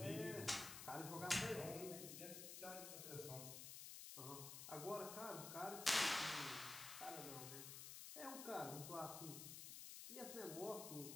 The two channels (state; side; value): noise; left; hiss, 7 dB below the sound